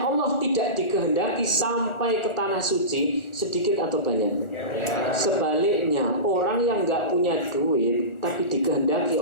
tidak dikehendaki sampai ke tanah suci sedikit atau banyak? Sebaliknya, orang yang nggak punya duit tapi dikehendaki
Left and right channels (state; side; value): late; right; 1.4 ms